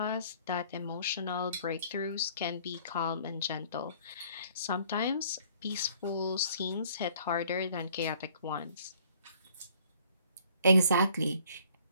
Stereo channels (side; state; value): both; inverted; correlation -0.58